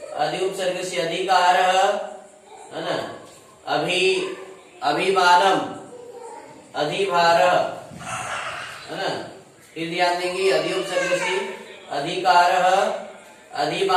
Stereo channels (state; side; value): identical; both; correlation 1.00